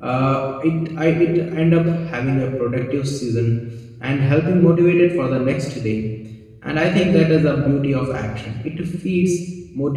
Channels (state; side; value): identical; both; correlation 1.00